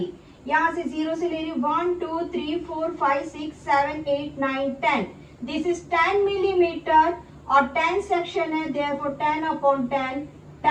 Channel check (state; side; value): identical; both; correlation 1.00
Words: यहाँ से 0 से ले रही हूँ 1 2 3 4 5 6 7 8 9 10. दिस इज 10 मिलीमीटर और 10 सेक्शन है. देयरफॉर 10/10.